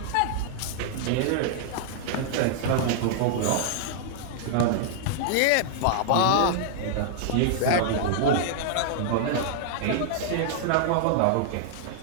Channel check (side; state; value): both; different; correlation -0.01